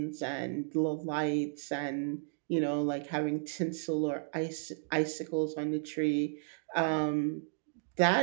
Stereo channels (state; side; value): silent; left; digital silence